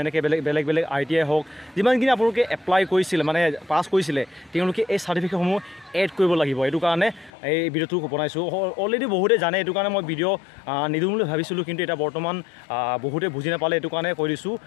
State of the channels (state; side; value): drops out; right; at 7.3 s